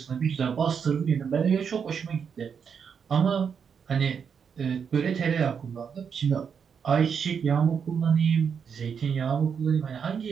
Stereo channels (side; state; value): left; quieter; 6.8 dB